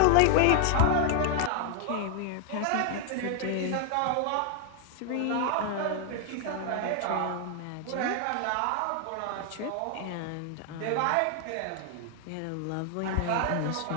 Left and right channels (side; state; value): both; different; correlation 0.00